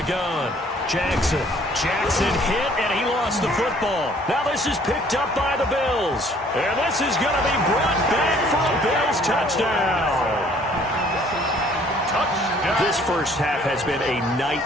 gun, Jackson. Jackson hit, and he lost the football. Now this is picked up by the Bills. And this is going to be brought back for a Bills touchdown. This first half has been a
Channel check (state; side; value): normal; both; correlation 0.58